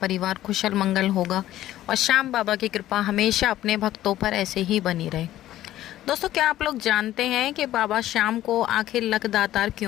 कुशल मंगल होगा और श्याम बाबा की कृपा हमेशा अपने भक्तों पर ऐसे ही बनी रहे। दोस्तों, क्या आप लोग जानते हैं कि बाबा श्याम को आखिर लख दातार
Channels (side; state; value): right; quieter; 13.8 dB